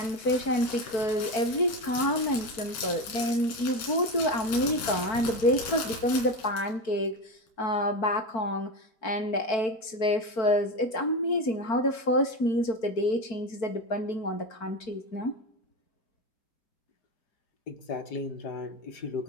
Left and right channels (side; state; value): right; late; 4.5 ms